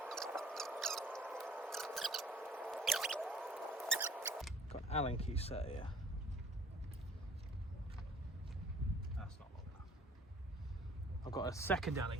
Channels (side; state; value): both; normal; correlation 0.53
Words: Got an Allen key set here. That's not long enough. I've got a second